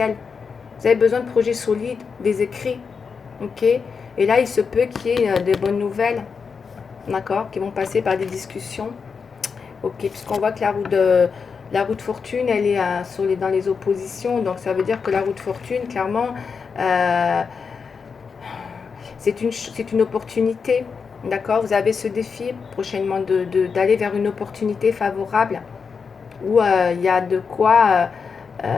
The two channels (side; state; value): right; quieter; 5.6 dB